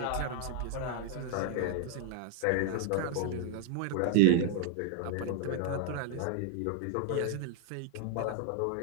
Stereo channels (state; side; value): different; both; correlation 0.00